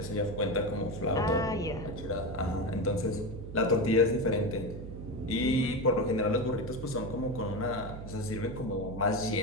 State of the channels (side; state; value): right; noise; hum, 10 dB below the sound